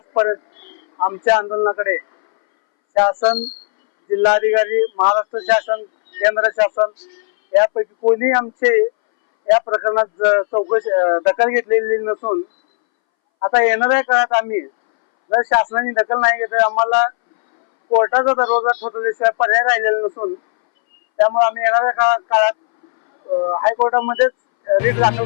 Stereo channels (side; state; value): right; silent; 65 dB below the other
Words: आमच्या आंदोलनाकडे शासन, जिल्हाधिकारी, महाराष्ट्र शासन, केंद्र शासन यापैकी कोणी आमचे या प्रकरणात चौकशी दखल घेतलेली नसून आता येणाऱ्या काळात आम्ही जर शासनाने दखल नाही घेतली आम्हाला कोर्टाचा दरवाजा ठोठवल्याशिवाय पर्याय राहिलेला नसून त्यामुळे आम्ही येणाऱ्या काळात हायकोर्टामध्येच रीट दाखल